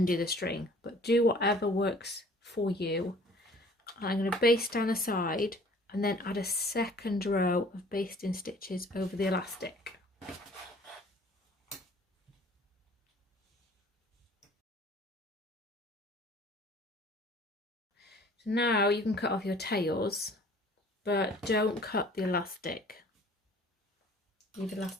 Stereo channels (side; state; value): both; normal; correlation 0.52